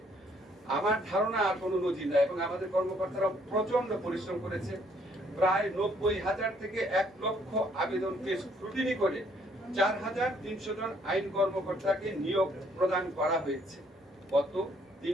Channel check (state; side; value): normal; both; correlation 0.66